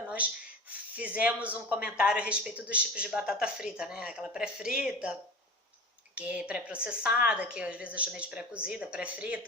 nós fizemos um comentário a respeito dos tipos de batata frita, né? Aquela pré-frita, que é pré-processada, que às vezes eu chamei de pré-cozida,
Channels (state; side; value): normal; both; correlation 0.33